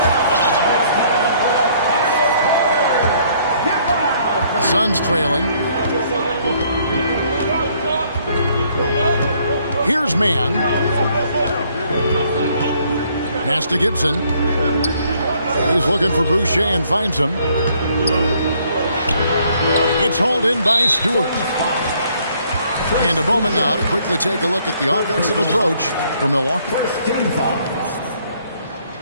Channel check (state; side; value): inverted; both; correlation -0.65